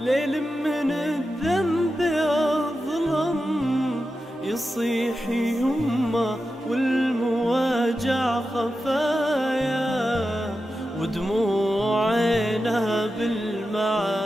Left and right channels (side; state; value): both; normal; correlation 0.91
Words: من الذنب أظلم، يصيح يمه والمواجع خفايا، ودموع عينها